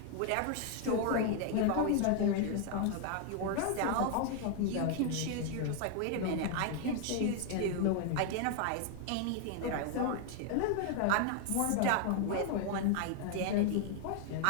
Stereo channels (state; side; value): different; both; correlation 0.00